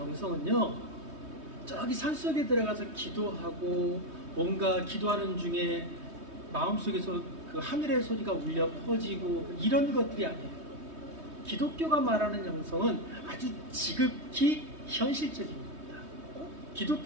저기 산속에 들어가서 기도하고 뭔가 기도하는 중에 마음속에서 그 하늘의 소리가 울려 퍼지고 이런 것들이 아니에요. 기독교가 말하는 영성은 아주 지극히 현실적인 겁니다.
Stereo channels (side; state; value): left; late; 3.2 ms